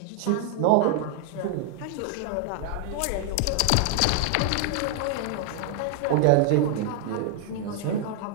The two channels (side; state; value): both; different; correlation 0.00